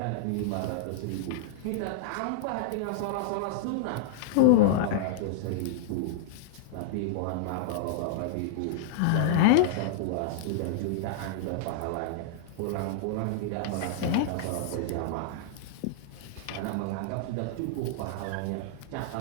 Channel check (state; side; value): different; both; correlation -0.01